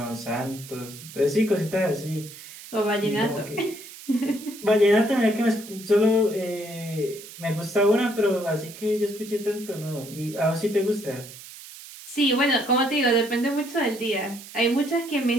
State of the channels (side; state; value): right; noise; hiss, 16 dB below the sound